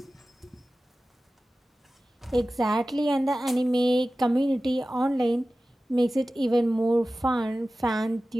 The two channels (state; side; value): normal; both; correlation 0.96